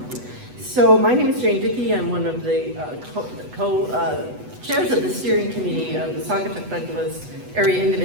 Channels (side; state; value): left; late; 8.1 ms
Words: So my name is Jane Dickey. I'm one of the chairs of the steering committee of the Saugatuck Douglas Area